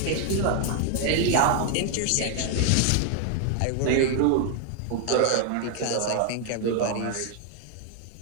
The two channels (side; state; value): both; different; correlation 0.00